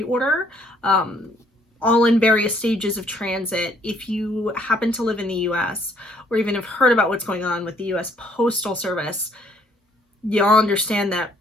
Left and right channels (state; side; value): normal; both; correlation 0.64